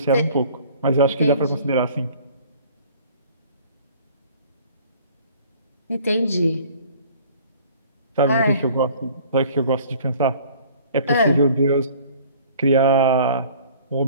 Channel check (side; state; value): both; inverted; correlation -0.51